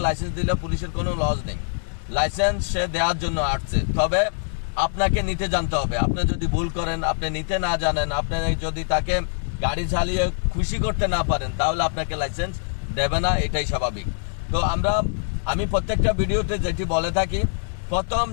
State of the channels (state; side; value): silent; right; digital silence